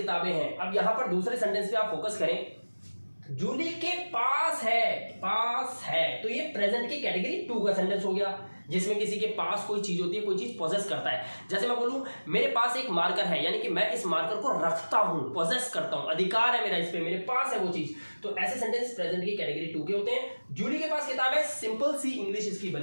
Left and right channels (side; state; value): both; inverted; correlation -1.00